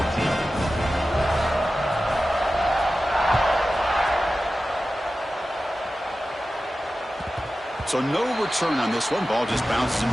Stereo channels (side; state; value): both; normal; correlation 0.94